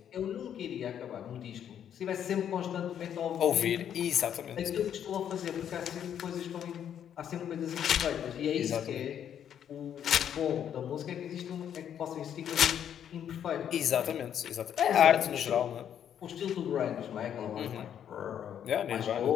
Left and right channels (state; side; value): quieter; right; 9.3 dB